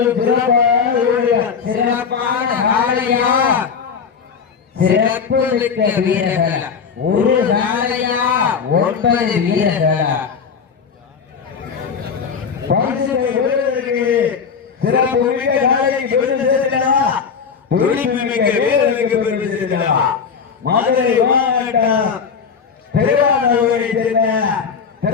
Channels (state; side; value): quieter; right; 6.2 dB